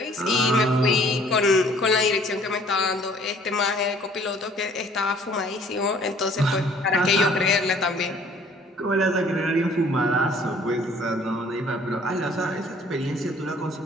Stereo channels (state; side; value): normal; both; correlation 0.56